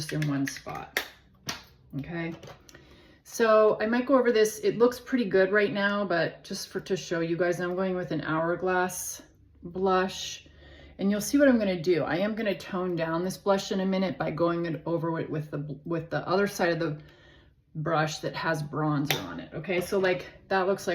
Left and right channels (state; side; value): identical; both; correlation 1.00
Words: in one spot. Okay. So I might go over this. It looks pretty good right now, but just to show you guys, I'm going with an Hourglass blush. And you'll see what I'm going to do. I am going to tone down this blush in a minute by going over it with the other side of the brush that has bronzer on it. Okay, so like that looks